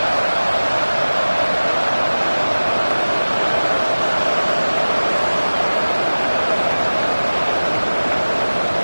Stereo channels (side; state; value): both; inverted; correlation -1.00